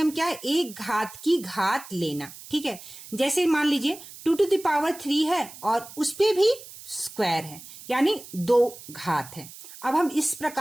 क्या है? एक घात की घात लेना। ठीक है, जैसे मान लीजिए 2⁻³ है और उस पे भी स्क्वायर है, यानी 2 घात है। अब हम इस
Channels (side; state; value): right; noise; hiss, 16 dB below the sound